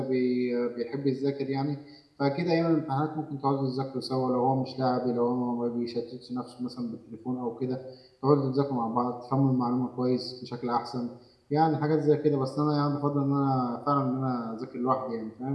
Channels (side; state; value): both; identical; correlation 1.00